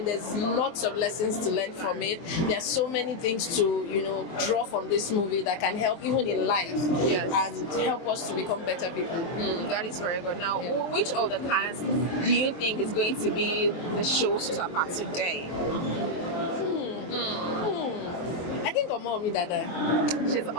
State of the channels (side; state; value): right; late; 23 ms